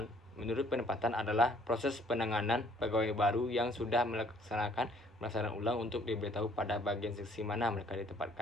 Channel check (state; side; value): normal; both; correlation 0.61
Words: adalah proses penanganan pegawai baru yang sudah melaksanakan pelaksanaan ulang untuk diberitahu pada bagian seksi mana mereka